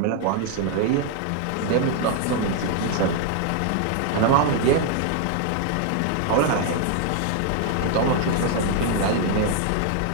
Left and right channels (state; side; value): different; both; correlation 0.00